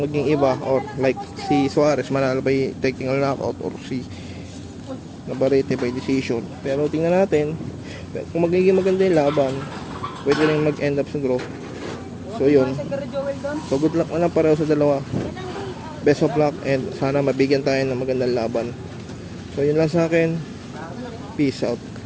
maging iba, or like si Suarez manalo by technical knockout or si Navarrete by decision. Pero tingnan natin kung magiging maganda yung laban, pwede rin mag-end up sa draw. So yun, so good luck na lang pareho sa dalawa. Best of luck and sana mabigyan tayo ng magandang laban. So yun lang sa akin. Peace out.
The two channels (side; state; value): both; identical; correlation 1.00